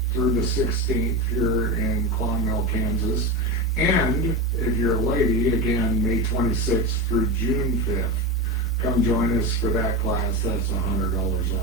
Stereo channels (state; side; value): normal; both; correlation 0.21